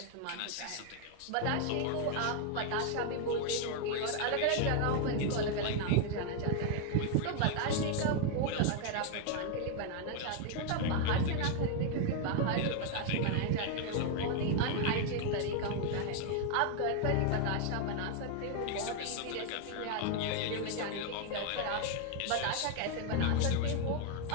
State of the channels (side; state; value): both; different; correlation 0.00